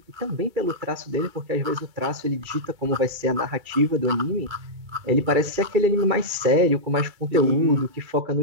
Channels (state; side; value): late; left; 2.4 ms